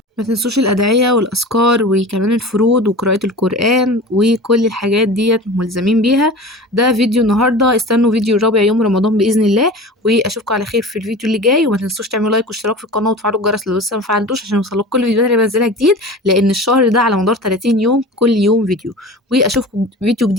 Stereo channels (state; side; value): normal; both; correlation 0.35